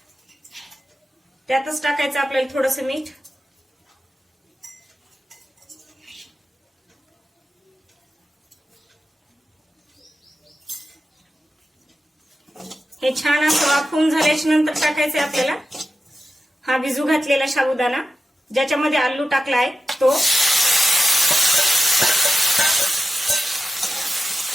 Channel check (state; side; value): normal; both; correlation 0.92